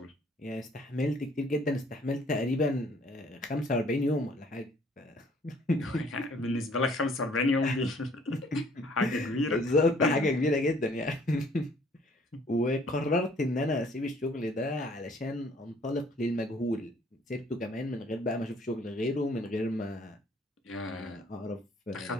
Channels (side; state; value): both; normal; correlation 0.59